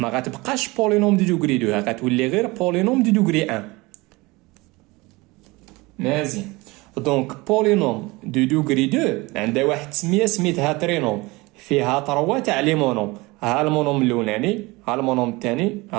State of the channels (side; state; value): left; quieter; 23.1 dB